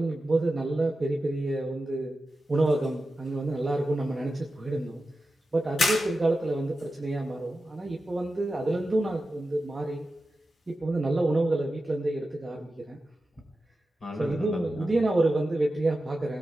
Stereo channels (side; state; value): both; normal; correlation 0.92